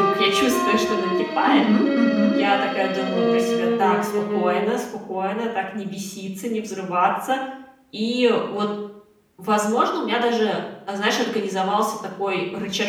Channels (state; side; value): identical; both; correlation 1.00